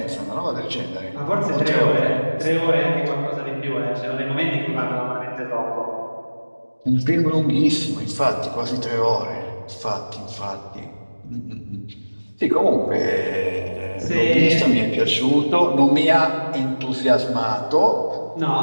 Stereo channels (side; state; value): both; inverted; correlation -1.00